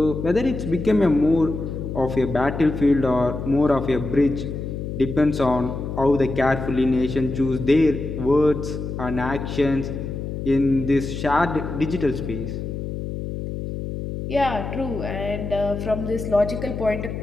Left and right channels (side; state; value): left; noise; hum, 6 dB below the sound